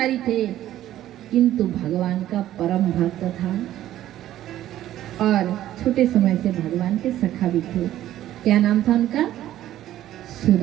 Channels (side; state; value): left; quieter; 13.1 dB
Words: थे, किंतु भगवान का परम भक्त था और छोटे समय से भगवान के सखा भी थे। क्या नाम था उनका?